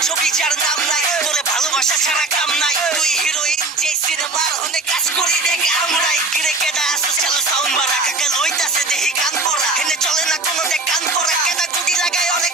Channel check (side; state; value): left; quieter; 3.2 dB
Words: ছবি যার নাম নাই, তোরে ভালোবাসা ছাড়া কাম নাই, তুই হিরোইন যে সিনেমার হনে কাজ করি দেখ আমরাই। কিরে কেডা আসো চালো সাউন্ড বাড়া, কাকা লইতাছে দেহি গান পড়া, হেনে চলে না কোনো দেখ কান পড়া, কেডা গুডি লাগায় অনেক